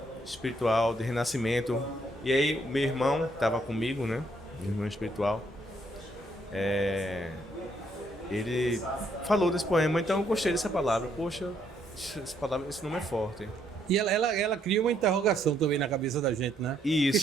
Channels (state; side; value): normal; both; correlation 0.71